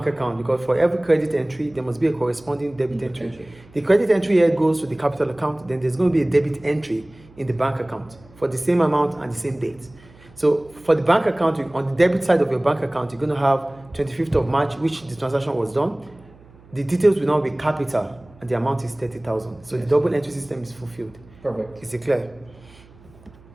account, because for every credit entry there must be a corresponding debit entry. The credit entry here goes to the capital account, then there's going to be a debit entry in the bank account for the same amount and the same date. So for the bank account, on the debit side of your bank account, you're going to have 25th of March, which the transaction was done. The details will now be capital and the amount is 30,000. So the double entry system is fulfilled. Perfect. Is it clear?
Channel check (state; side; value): noise; right; hum, 25 dB below the sound